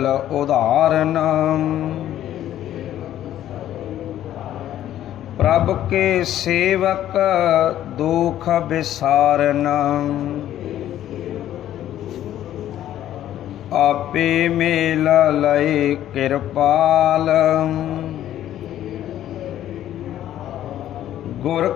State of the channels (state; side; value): quieter; right; 12.1 dB